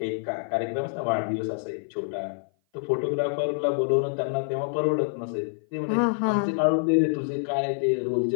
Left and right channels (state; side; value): silent; right; 56 dB below the other